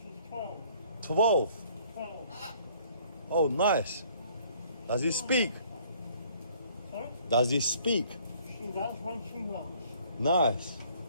12. 12. 12. Oh, nice. Does he speak? Sorry? Does he speak? She does when she wants. Nice.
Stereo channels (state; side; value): inverted; both; correlation -0.59